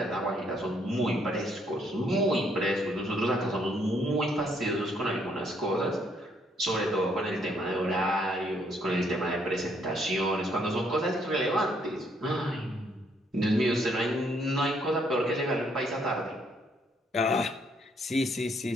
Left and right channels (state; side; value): normal; both; correlation 0.69